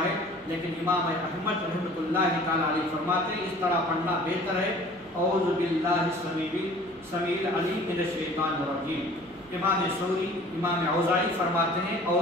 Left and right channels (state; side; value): noise; right; hum, 27 dB below the sound